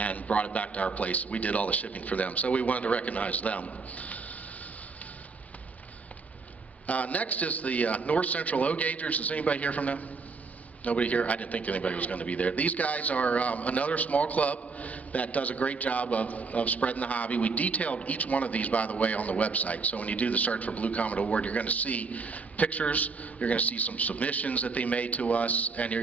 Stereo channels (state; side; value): quieter; left; 4.5 dB